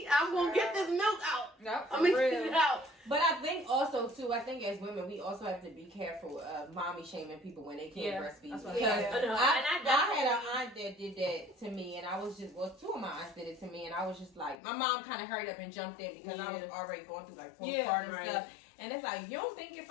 I'm gonna get this milk out. Yep, I'm gonna get it out. But I think also too, as women, we also have to be careful of mommy shaming people when they can't breastfeed. That's Because I had an aunt that did that to me, and I was just, two of my aunts did it to me, and I was just like, my mom kind of hurried up and jumped in because I was already going through like postpartum stuff. And it's like, you don't think if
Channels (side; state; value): right; drops out; at 14.6 s